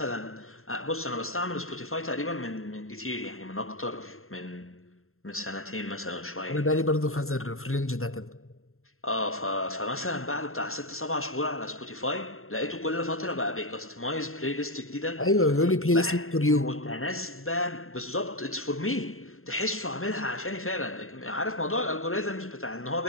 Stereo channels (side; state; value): right; late; 0.62 ms